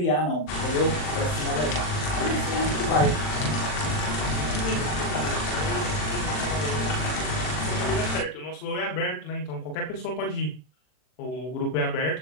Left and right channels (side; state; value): right; late; 39 ms